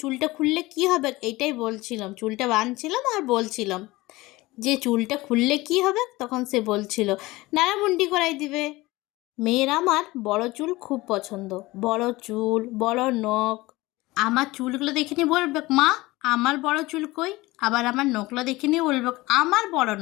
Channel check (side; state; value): right; quieter; 20.2 dB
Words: খুললে কি হবে, এইটাই বলছিলাম, চুলটা বাঁধছিলাম আর বলছিলাম যে চুলটা খুললে কি হবে, তখন সে বলছিল নাড়ামুন্ডি করাই দিবে। মেয়ের আমার বড় চুল খুব পছন্দ, বড় চুল, বড় নখ। আমার চুলগুলো দেখে নিয়ে বলবে, মা আমার বড় চুল কই? আবার আমার নখগুলো দেখে নিয়ে বলবে, আমার বড়